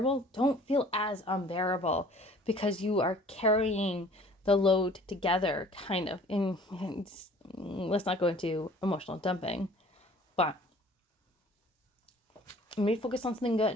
don't feel as unbearable because you are carrying the load together, kind of. And let's not go into emotional dumping, but maybe focus on something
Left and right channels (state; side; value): normal; both; correlation 0.51